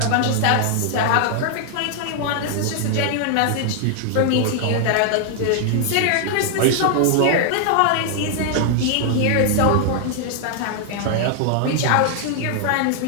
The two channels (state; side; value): different; both; correlation 0.00